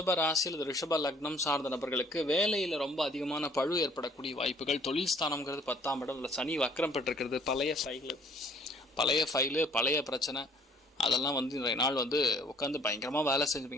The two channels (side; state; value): both; normal; correlation 0.58